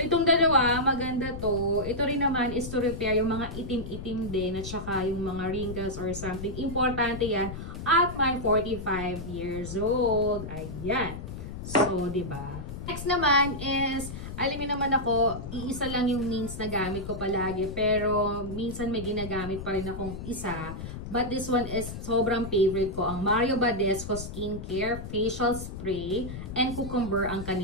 itong dalawa, maganda to. Ito rin naman is to repair yung mga itim-itim din at saka yung mga wrinkles or something. Importante yan at my 45 years old. Ayan. So, diba? Next naman is, alam niyo naman ako, iisa lang yung means na gamit ko palagi. Pero, minsan may ginagamit pa rin akong isa. But this one is sobrang favorite ko. Ang Mario Badescu Skincare Facial Spray and Cucumber ang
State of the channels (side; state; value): left; noise; rumble, 9 dB below the sound